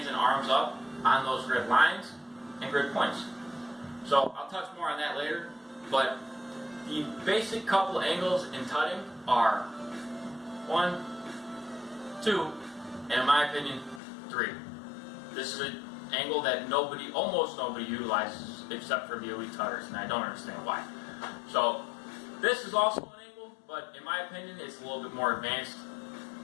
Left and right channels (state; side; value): drops out; right; at 14.0 s